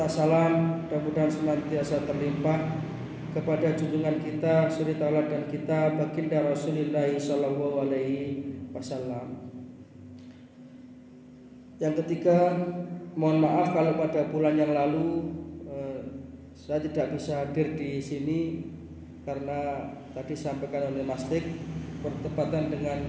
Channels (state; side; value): identical; both; correlation 1.00